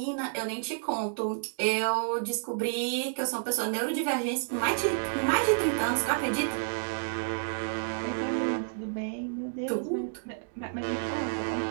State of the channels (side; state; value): left; silent; digital silence